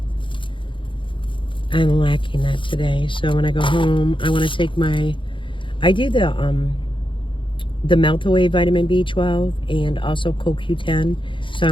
I'm lacking that today. So when I go home, I want to take my... I do the Melt Away Vitamin B12 and also CoQ10. So I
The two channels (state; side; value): late; right; 0.24 ms